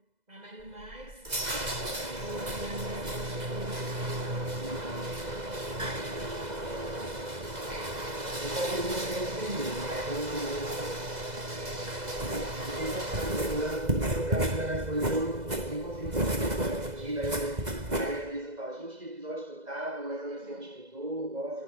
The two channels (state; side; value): late; left; 2.0 ms